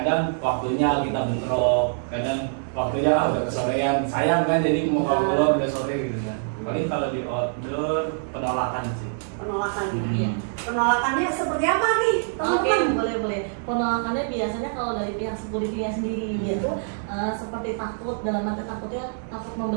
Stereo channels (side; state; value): left; silent; digital silence